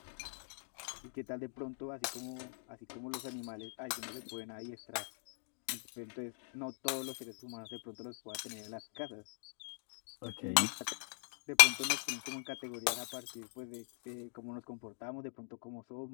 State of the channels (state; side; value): silent; right; digital silence